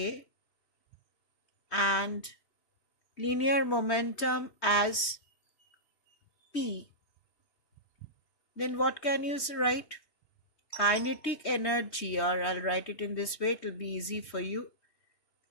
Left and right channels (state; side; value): late; right; 3.2 ms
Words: and linear momentum as P, then what can you write? Kinetic energy, or I'll write it in this way, it will be easy for you.